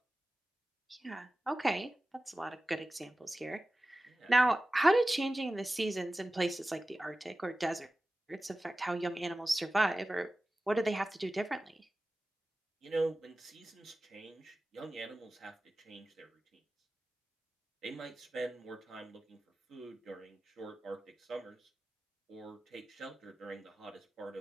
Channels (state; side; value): normal; both; correlation 0.95